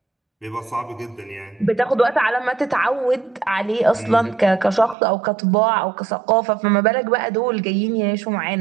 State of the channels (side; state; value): left; drops out; at 5.0 s